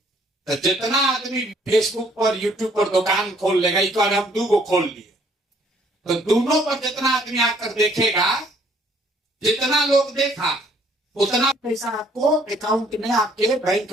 तो जितना आदमी फेसबुक पर YouTube पर दुकान खोल लेगा, एक बार हम 2 को खोल लिए, तो दोनों पर जितना आदमी आकर देखेगा, जितना लोग देखा उतना पैसा आपको अकाउंट में, आपके बैंक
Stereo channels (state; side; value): normal; both; correlation 0.62